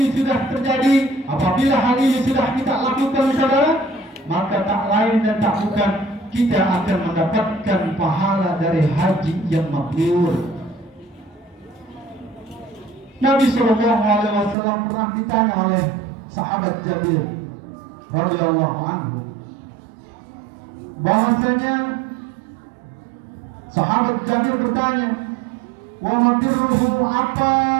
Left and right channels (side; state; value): left; drops out; at 14.6 s